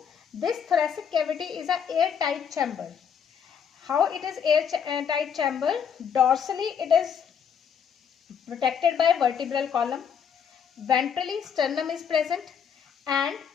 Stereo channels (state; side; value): quieter; right; 7.5 dB